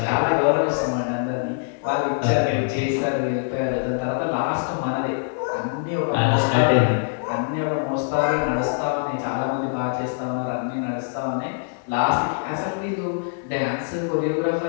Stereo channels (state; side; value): silent; right; digital silence